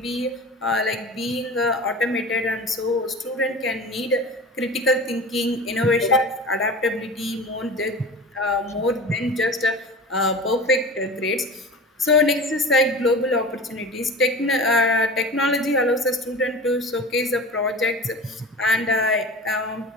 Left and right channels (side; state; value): both; normal; correlation 0.34